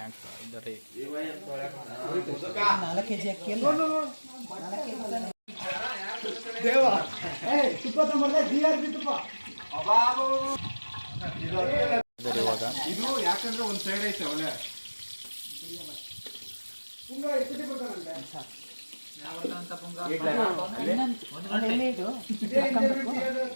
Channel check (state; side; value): inverted; both; correlation -1.00